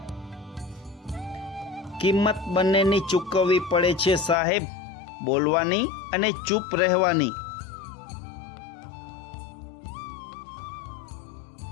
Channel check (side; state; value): right; drops out; at 4.4 s